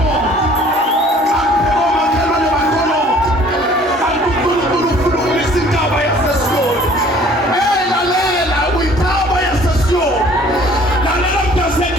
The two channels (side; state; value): both; normal; correlation 0.53